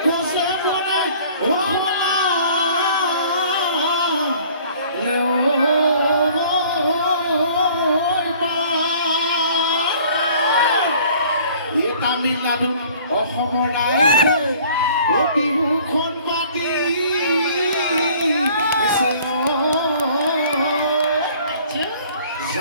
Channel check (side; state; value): both; inverted; correlation -0.53